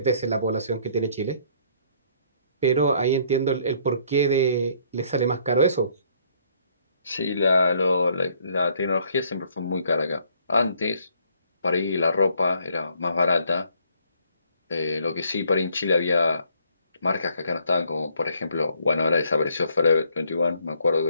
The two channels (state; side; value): inverted; both; correlation -0.65